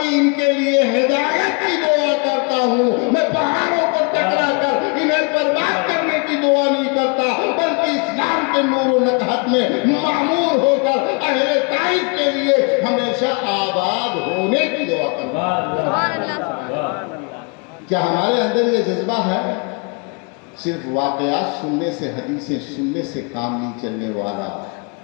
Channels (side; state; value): right; quieter; 34.3 dB